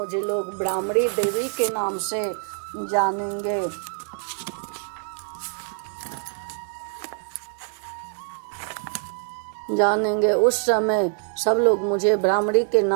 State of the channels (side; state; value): left; silent; 62 dB below the other